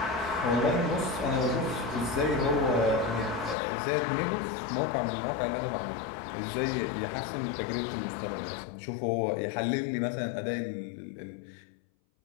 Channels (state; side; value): drops out; right; at 3.6 s